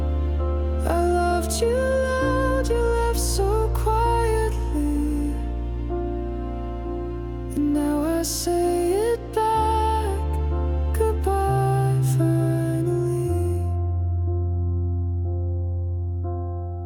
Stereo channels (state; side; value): identical; both; correlation 1.00